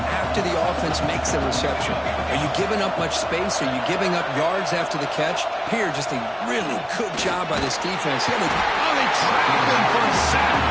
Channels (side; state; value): both; identical; correlation 1.00